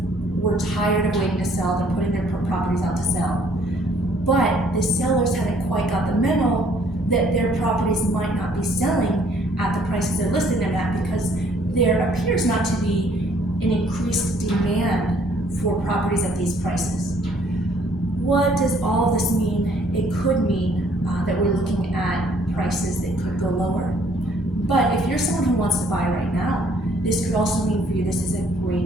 were tired of waiting to sell. They're putting their properties out to sell. But the sellers haven't quite got the memo that their properties might not be selling at the prices they're listing them at, because there appears not to be an increased demand for properties at these prices. What does all of this mean? It could mean that we're looking at prices that could go lower. But if you're someone who wants to buy right now, this could also mean for you this is a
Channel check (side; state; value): both; normal; correlation 0.62